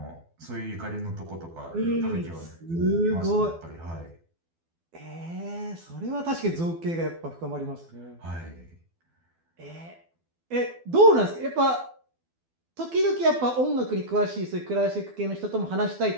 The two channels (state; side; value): late; left; 12 ms